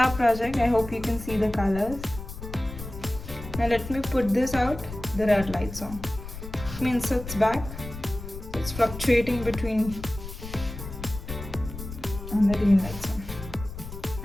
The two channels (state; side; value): noise; left; rumble, 10 dB below the sound